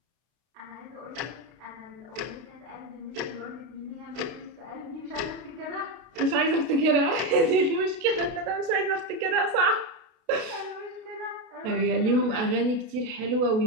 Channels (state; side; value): late; left; 32 ms